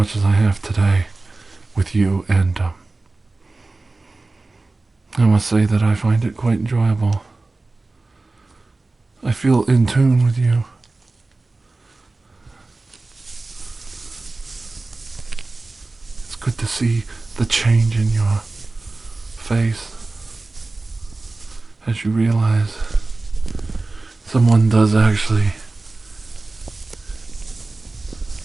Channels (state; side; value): quieter; left; 3.3 dB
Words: as I have today with you, and I must say that I find it quite enjoyable. I feel in tune with you. It's good to see the change in your face as you realize someone does actually